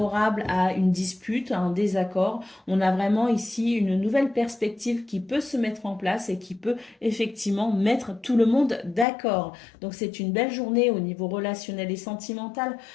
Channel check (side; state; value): right; drops out; at 9.1 s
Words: à une dispute, à un désaccord. On a vraiment ici une nouvelle perspective qui peut se mettre en place et qui peut effectivement mettre tout le monde d'accord. Donc c'est une belle journée au niveau relationnel et sentimental